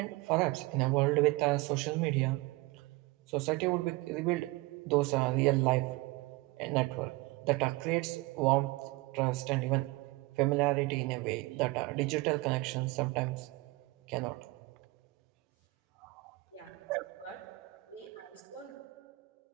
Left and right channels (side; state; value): left; quieter; 22.5 dB